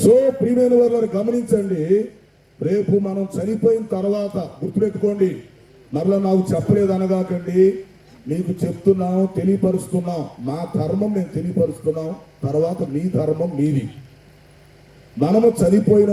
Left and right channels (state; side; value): identical; both; correlation 1.00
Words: సో ప్రియమైన వారిని గమనించండి. రేపు మనం చనిపోయిన తర్వాత గుర్తుపెట్టుకోండి, మరలా నాకు చెప్పలేదు అనగాకండి. మీకు చెప్తున్నాం, తెలియపరుస్తున్నాం. మా ధర్మం నేను తెలియపరుస్తున్నాం, తర్వాత మీ ధర్మం మీది. మనము చనిపోయిన